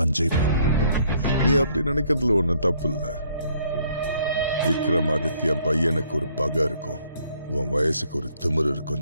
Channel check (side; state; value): both; inverted; correlation -0.65